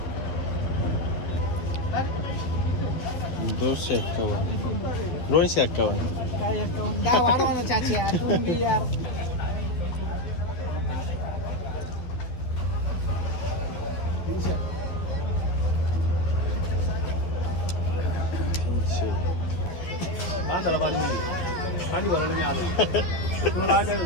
251 251 काय वाढवा ना चाची यार. तुम्ही बी यार. बांधायला पाणी नाही. पाणी भरायला मी आलो. तुला काय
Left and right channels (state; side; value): late; right; 12 ms